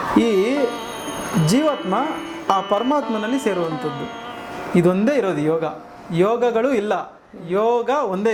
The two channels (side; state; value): both; identical; correlation 1.00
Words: ಈ ಜೀವಾತ್ಮ ಆ ಪರಮಾತ್ಮನಲ್ಲಿ ಸೇರುವಂಥದ್ದು. ಇದೊಂದೇ ಇರೋದು ಯೋಗ. ಯೋಗಗಳು ಇಲ್ಲ, ಯೋಗ ಒಂದೇ